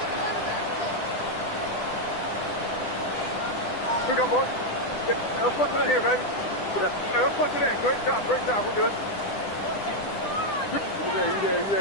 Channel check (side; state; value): right; late; 10 ms